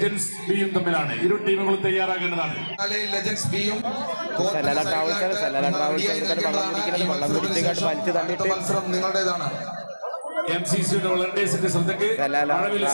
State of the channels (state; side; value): inverted; both; correlation -1.00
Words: ബിയും തമ്മിലാണ്. ഇരു ടീമുകളും തയ്യാറാകേണ്ടതാണ്. ലെജൻസ് ബിയും മത്സരം നിങ്ങളുടേതാണ്. MCCയുടെ വളണ്ടിയേഴ്സിന്റെ ശ്രദ്ധയ്ക്ക് മഴവിൽ